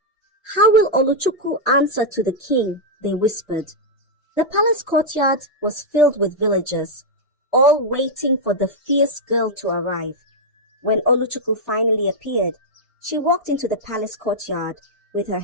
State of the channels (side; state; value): both; normal; correlation -0.04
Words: "How will Oluchukwu answer to the king?" they whispered. The palace courtyard was filled with villagers, all waiting for the fierce girl to arrive. When Oluchukwu finally appeared, she walked into the palace courtyard with her